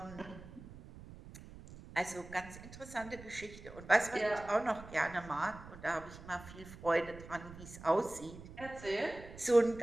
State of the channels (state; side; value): noise; right; rumble, 16 dB below the sound